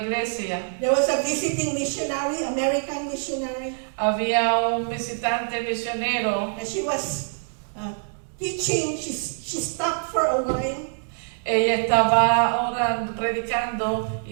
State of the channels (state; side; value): silent; left; 62 dB below the other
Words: There was a visiting missionary, American missionary, Había un visitante misionero. and she was teaching. She stopped for a while. Ella estaba orando, predicando,